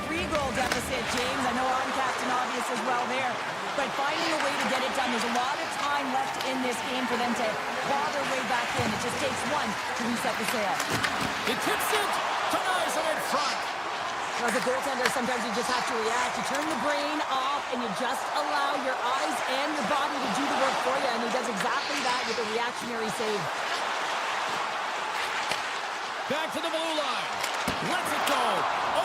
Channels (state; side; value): identical; both; correlation 1.00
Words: 3-goal deficit, James. I know I'm Captain Obvious as well there. But finding a way to get it done, there's a lot of time left in this game for them to claw their way back in. It just takes one to reset the sail. He tips it, denies him in front. As a goaltender, sometimes you just have to react. You turn the brain off, and you just allow your eyes and your body to do the work for you, and he does exactly that with a reactionary save. Back to the blue line. Lets it go.